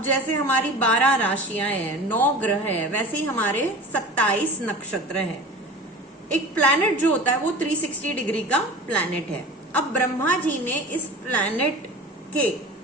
जैसे हमारी 12 राशियां हैं, 9 ग्रह है, वैसे ही हमारे 27 नक्षत्र है। एक प्लैनेट जो होता है वो 360 डिग्री का प्लैनेट है। अब ब्रह्मा जी ने इस प्लैनेट के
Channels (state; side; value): normal; both; correlation 0.35